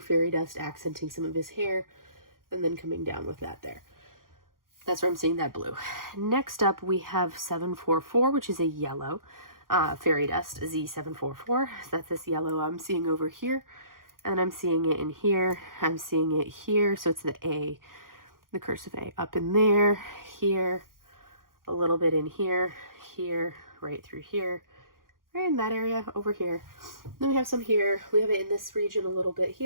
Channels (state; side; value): late; left; 0.91 ms